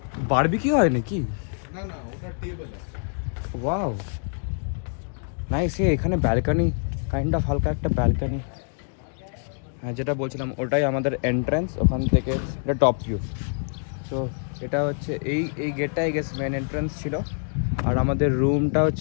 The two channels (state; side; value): silent; right; 61 dB below the other